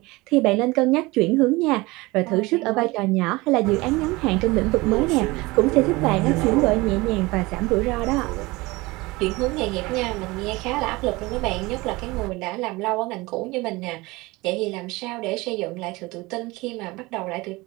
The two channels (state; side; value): quieter; left; 22.2 dB